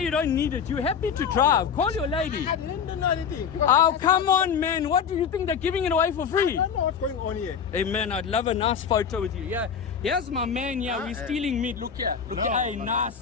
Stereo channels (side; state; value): right; quieter; 7.0 dB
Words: you don't need it. You're happy to drive. Call your lady. I didn't do anything. Oh, come on, man. What do you think? They're giving it away for I free? don't know what's going on here. Hey, man, I'd love a nice photo with you. Yeah, here's my man. Yeah, we're stealing meat. Look here. Look here. Hey,